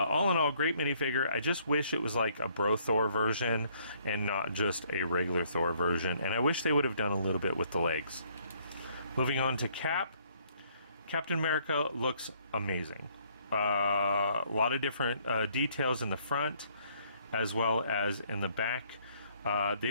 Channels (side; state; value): both; inverted; correlation -0.65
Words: in all, great minifigure. I just wish it was like a Bro Thor version and not just a regular Thor version. And I wish they would have done a little bit with the legs. Moving on to Cap. Captain America looks amazing. A lot of different details in the front as well as in the back. They